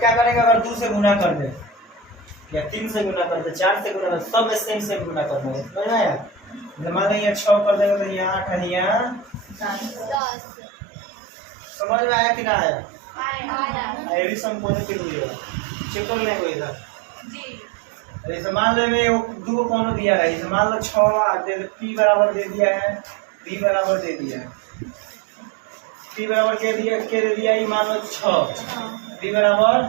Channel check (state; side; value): drops out; left; at 10.2 s